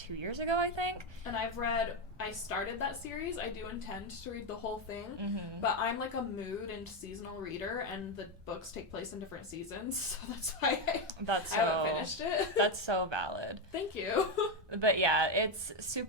years ago, I think. And I started that series. I do intend to read the whole thing, Mm-hmm. but I'm a mood and seasonal reader, and the books take place in different seasons, so that's why I haven't finished it. That's so valid. Thank you. But yeah, it's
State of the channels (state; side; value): normal; both; correlation 0.08